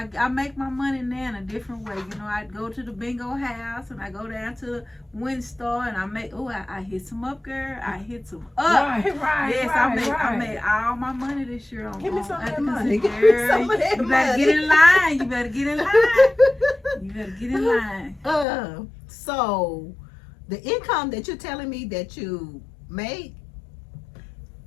I make my money now in a different way. I go to the bingo house and I go down to the Win Star and I hit some up, girl. I hit some up. Right. Yes, I made all my money this year on. Give me some of that money. Give me some of that You money. better get in line. You better get in line. So the income that you're telling me that you made,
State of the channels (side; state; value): right; drops out; at 18.4 s